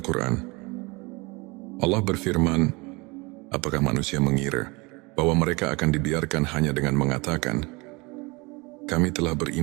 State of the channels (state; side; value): quieter; left; 26.1 dB